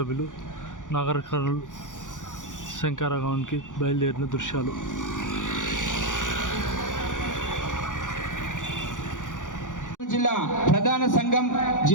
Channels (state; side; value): late; right; 0.87 ms